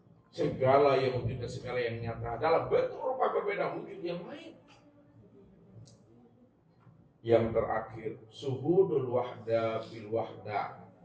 segala yang wujud dan segala yang nyata dalam bentuk rupa berbeda, wujud yang lain. Yang terakhir, suhudul wahda bil wahda.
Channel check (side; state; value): both; identical; correlation 1.00